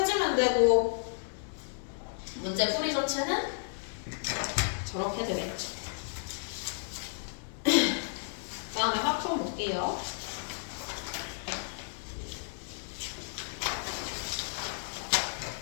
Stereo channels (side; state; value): right; silent; digital silence